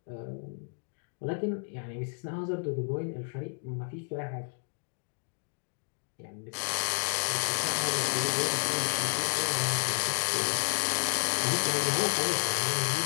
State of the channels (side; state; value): right; silent; digital silence